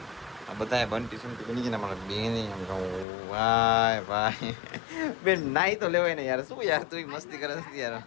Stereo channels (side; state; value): right; drops out; at 3.1 s